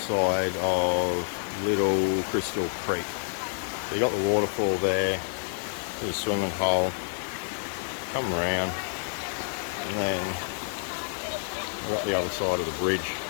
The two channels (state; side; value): silent; right; 59 dB below the other